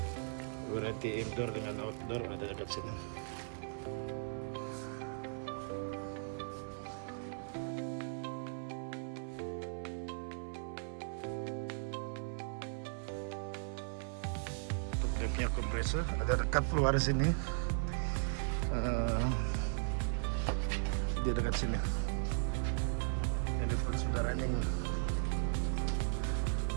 Variety indoor dengan outdoor ada dekat sini. Dia punya kompresor ada dekat keluar sini. Dia dekat sini. Ini pun sudah running.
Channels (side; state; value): left; silent; 53 dB below the other